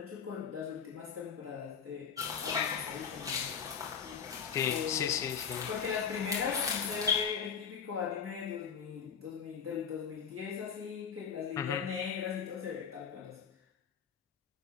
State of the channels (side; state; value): right; quieter; 6.9 dB